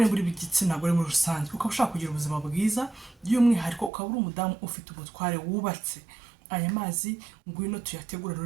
uri igitsina gore muri rusange, ukaba ushaka kugira ubuzima bwiza by'umwihariko, ukaba uri umudamu ufite umutware wubatse, aya mazi ngwino tuyategura.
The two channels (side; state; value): left; drops out; at 3.9 s